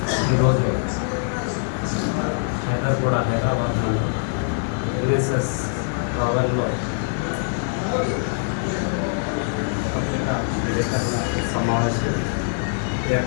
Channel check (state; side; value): silent; right; digital silence